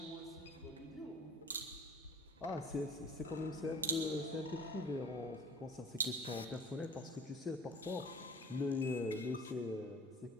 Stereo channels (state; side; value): normal; both; correlation 0.45